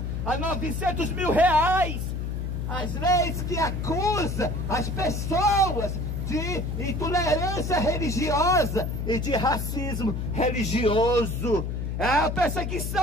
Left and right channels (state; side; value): noise; left; hum, 3 dB below the sound